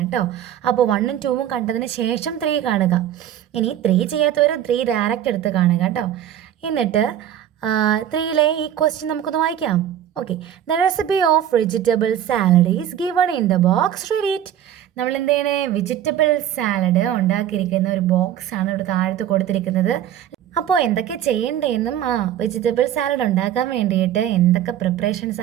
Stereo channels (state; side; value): quieter; left; 10.8 dB